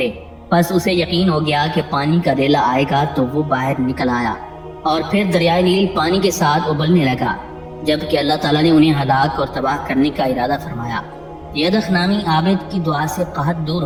پس اسے یقین ہو گیا کہ پانی کا ریلا آئے گا تو وہ باہر نکل آیا اور پھر دریائے نیل پانی کے ساتھ ابلنے لگا۔ جبکہ اللہ تعالیٰ نے انہیں ہلاک اور تباہ کرنے کا ارادہ فرمایا۔ یدخ نامی عابد کی دعا سے قحط دور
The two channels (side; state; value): both; identical; correlation 1.00